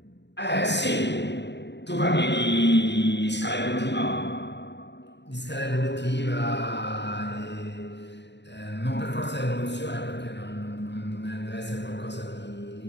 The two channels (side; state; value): right; late; 0.51 ms